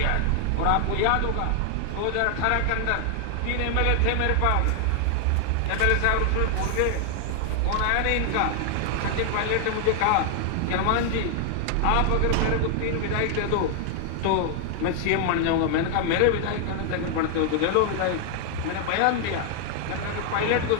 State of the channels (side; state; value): both; different; correlation 0.00